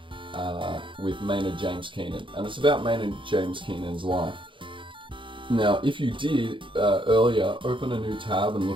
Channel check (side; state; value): left; late; 0.24 ms